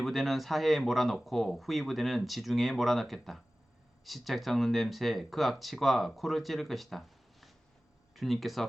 부대는 사해에 몰아넣고 후이 부대는 지중해에 몰아넣겠다. 시책 썩는 냄새 그 악취가 코를 찌를 것이다.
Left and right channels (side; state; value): both; normal; correlation 0.96